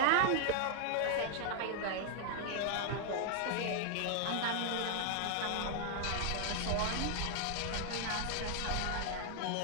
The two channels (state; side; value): different; both; correlation 0.00